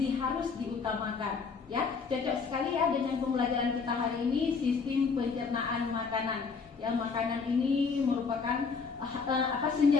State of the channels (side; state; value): right; quieter; 5.2 dB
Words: harus diutamakan. Ya, cocok sekali ya dengan pembelajaran kita hari ini, sistem pencernaan makanan. Yang makanan ini merupakan